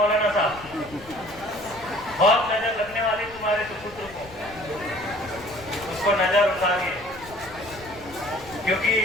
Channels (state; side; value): noise; left; rumble, 19 dB below the sound